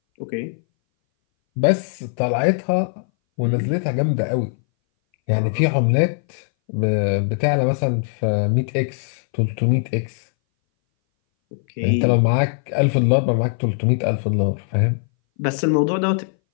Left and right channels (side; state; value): right; silent; 61 dB below the other